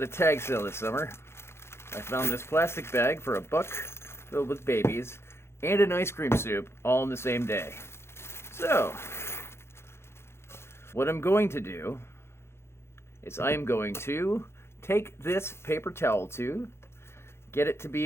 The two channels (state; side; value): late; right; 0.12 ms